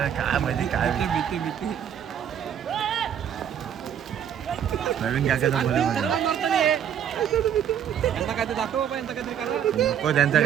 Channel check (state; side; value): quieter; left; 9.1 dB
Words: काय माहिती काय भीती. प्रवीण काकाचा पोरे नको त्यांचा